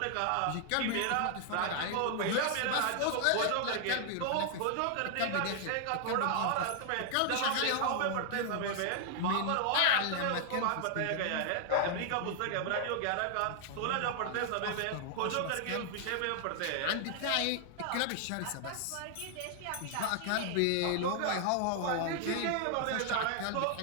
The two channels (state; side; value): different; both; correlation 0.00